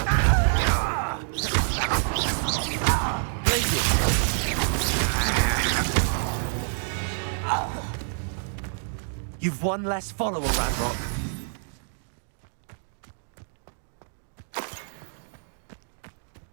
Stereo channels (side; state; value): left; silent; digital silence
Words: You've one less follower, Ranrock.